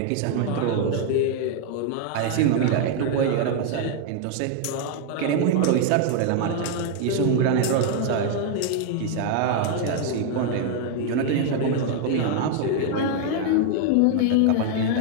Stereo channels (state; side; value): different; both; correlation 0.00